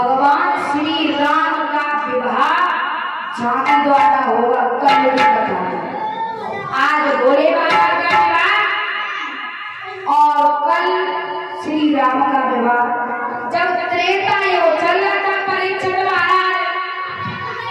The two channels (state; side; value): identical; both; correlation 1.00